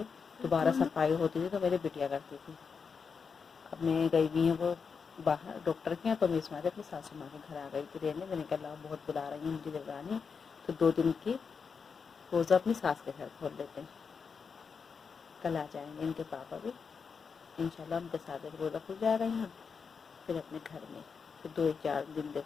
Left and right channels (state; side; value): quieter; right; 5.7 dB